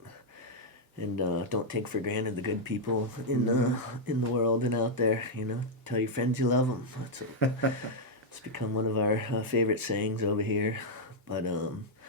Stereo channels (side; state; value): both; normal; correlation -0.02